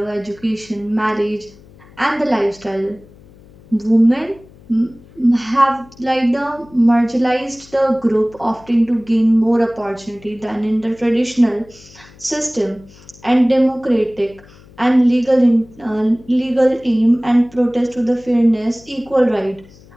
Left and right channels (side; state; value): left; noise; hum, 24 dB below the sound